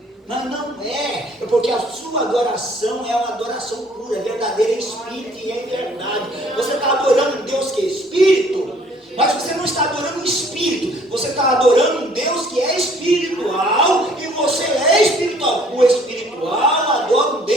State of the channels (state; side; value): normal; both; correlation 0.58